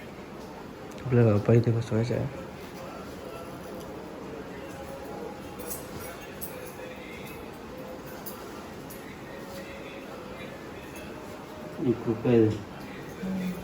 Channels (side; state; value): both; identical; correlation 1.00